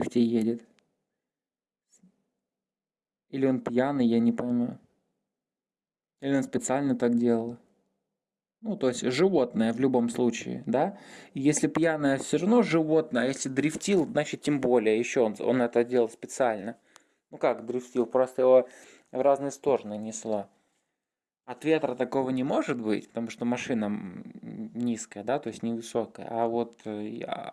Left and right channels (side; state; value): both; identical; correlation 1.00